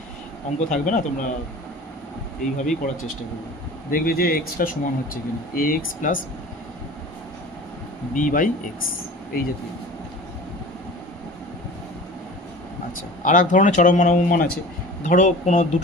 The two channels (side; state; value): both; normal; correlation 0.39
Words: অঙ্ক থাকবে না, তোমরা এইভাবেই করার চেষ্টা করবে, দেখবে যে এক্সটা সমান হচ্ছে কিনা, a x plus B by x, এই জাতীয়। আচ্ছা, আর এক ধরনের চরম মান অবমান আছে, ধরো কোনো